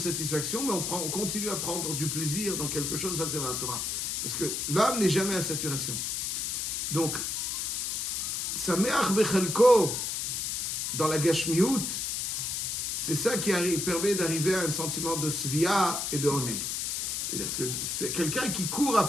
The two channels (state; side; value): noise; left; hiss, 1 dB below the sound